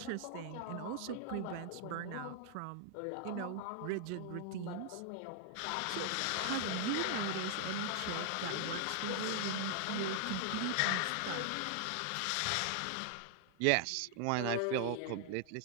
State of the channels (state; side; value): different; both; correlation 0.00